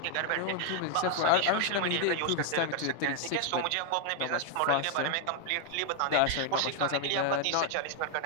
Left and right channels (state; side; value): different; both; correlation 0.00